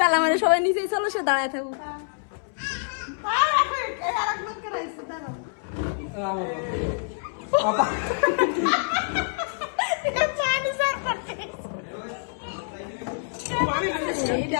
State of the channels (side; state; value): right; silent; 61 dB below the other